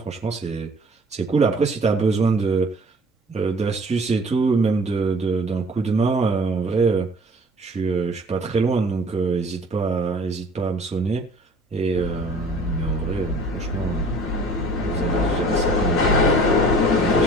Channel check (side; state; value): both; normal; correlation 0.49